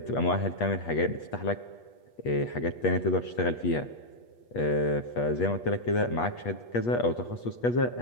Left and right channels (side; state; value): right; late; 8.4 ms